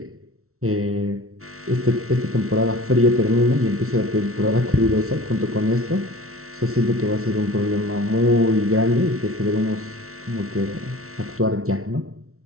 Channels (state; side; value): late; left; 0.63 ms